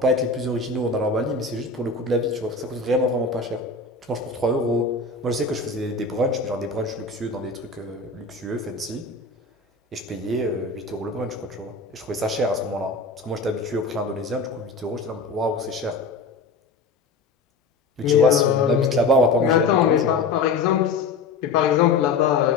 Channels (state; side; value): quieter; right; 3.9 dB